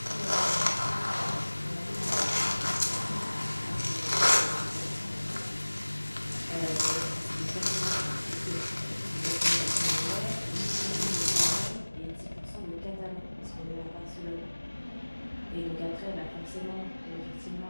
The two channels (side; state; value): both; inverted; correlation -1.00